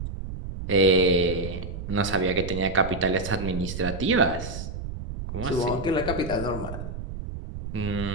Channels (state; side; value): noise; right; rumble, 7 dB below the sound